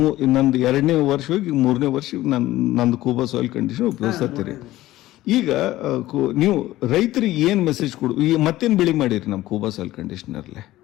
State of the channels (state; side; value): quieter; right; 16.0 dB